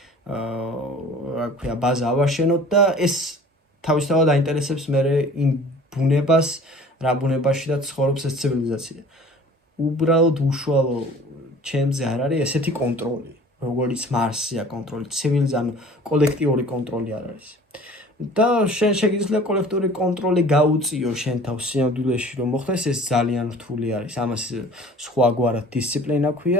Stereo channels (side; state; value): both; normal; correlation 0.47